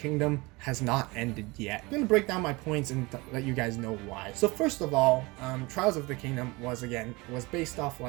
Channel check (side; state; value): left; quieter; 24.1 dB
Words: has not ended yet. I'm going to break down my points and let you guys know why. So first of all, Trials of the Kingdom was based off